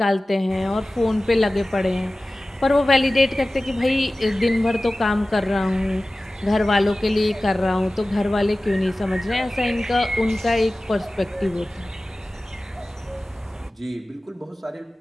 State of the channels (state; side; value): normal; both; correlation 0.97